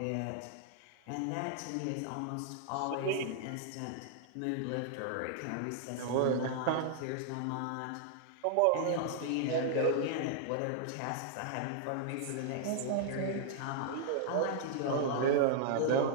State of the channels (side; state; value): both; different; correlation -0.01